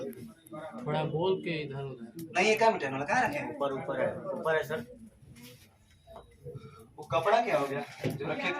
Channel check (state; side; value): identical; both; correlation 1.00